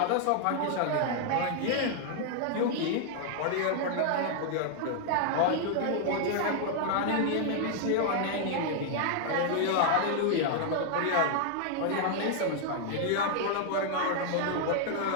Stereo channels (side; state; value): both; different; correlation 0.00